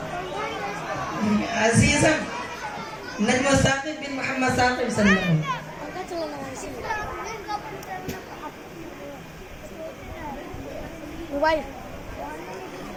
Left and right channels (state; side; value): identical; both; correlation 1.00